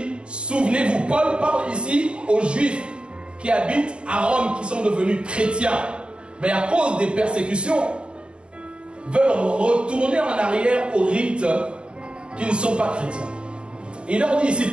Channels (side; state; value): left; late; 0.054 ms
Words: souvenez-vous, Paul parle ici aux Juifs qui habitent à Rome, qui sont devenus chrétiens, mais à cause des persécutions, veulent retourner en arrière aux rites qui ne sont pas chrétiens. Et il leur dit ici,